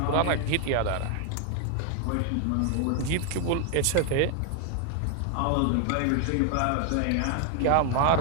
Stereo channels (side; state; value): both; different; correlation 0.00